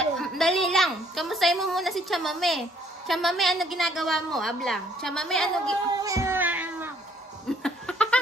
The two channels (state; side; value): normal; both; correlation 0.63